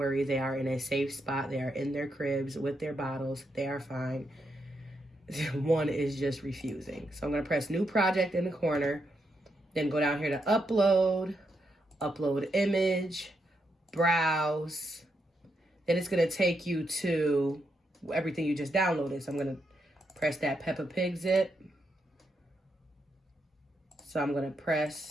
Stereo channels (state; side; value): normal; both; correlation 0.82